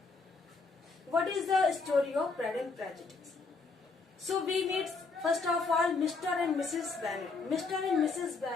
What is the story of Pride and Prejudice? So we meet first of all Mr. and Mrs. Bennet. Mr. and Mrs.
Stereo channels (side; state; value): right; quieter; 4.2 dB